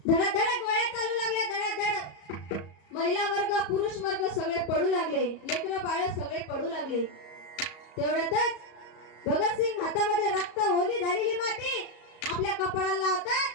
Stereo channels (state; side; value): late; right; 34 ms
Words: धडाधड गोळ्या चालू लागल्या, धडाधड. महिला वर्ग पुरुष वर्ग सगळे पडू लागले, लेकरं बाळ सगळे पडू लागले. तेवढ्यातच भगतसिंग हातामध्ये रक्त ओली झालेली माती आपल्या कपाळाला